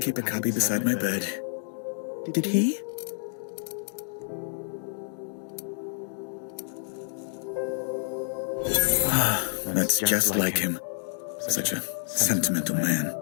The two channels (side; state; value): right; silent; digital silence